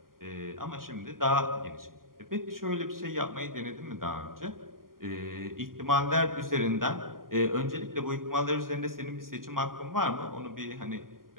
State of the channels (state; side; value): late; left; 0.91 ms